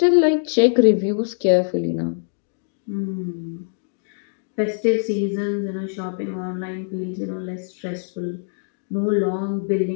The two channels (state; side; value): silent; right; digital silence